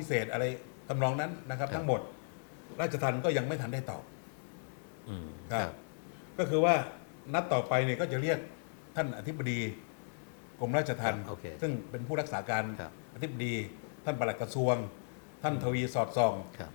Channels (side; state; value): right; silent; digital silence